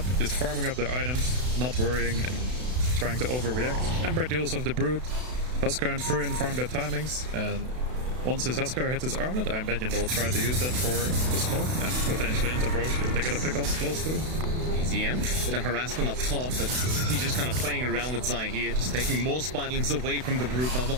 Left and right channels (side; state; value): left; late; 32 ms